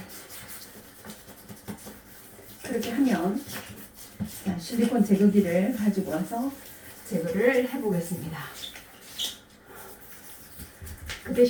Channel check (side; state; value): both; identical; correlation 1.00